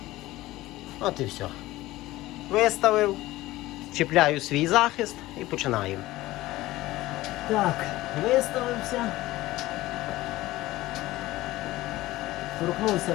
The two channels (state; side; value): quieter; right; 17.4 dB